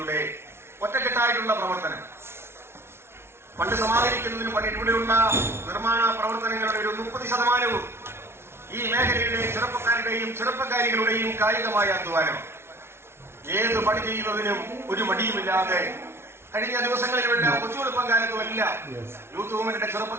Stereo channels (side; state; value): left; late; 0.12 ms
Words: ഒറ്റക്കെട്ടായിട്ടുള്ള പ്രവർത്തനം ഫണ്ട് സമാഹരിക്കുന്നതിന് പണി ഇവിടെയുള്ള നിർമ്മാണ പ്രവർത്തനങ്ങളുടെ ഒരു 30% ഈ മേഖലയിലെ ചെറുപ്പക്കാരുടെയും ചെറുപ്പക്കാരികളുടെയും കായികമായ അധ്വാനം. ഏത് പണി ചെയ്യുന്നതിനും ഒരു മടിയുമില്ലാതെ കഴിഞ്ഞ ദിവസങ്ങളിലെല്ലാം കൊച്ചുവെളുപ്പം കാലത്തുമെല്ലാം യൂത്ത് മൂവ്മെന്റിന്റെ